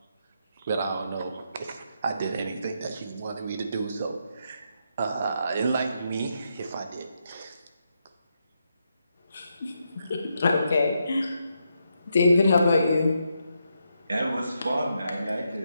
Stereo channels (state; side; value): inverted; both; correlation -0.81